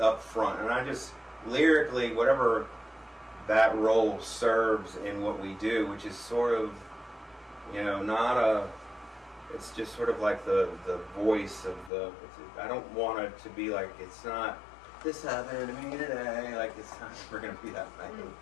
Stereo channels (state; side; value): drops out; right; at 11.9 s